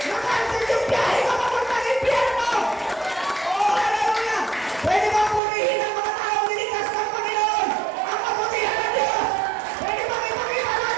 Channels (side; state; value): left; drops out; at 5.4 s